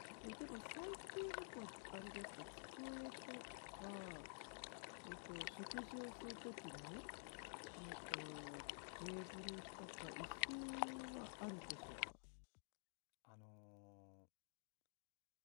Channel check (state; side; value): silent; right; digital silence